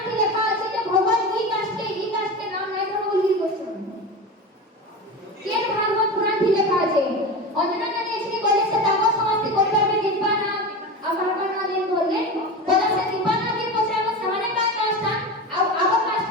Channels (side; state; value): both; normal; correlation 0.26